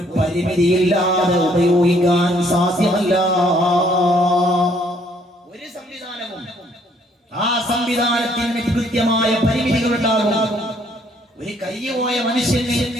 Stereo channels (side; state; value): both; normal; correlation 0.65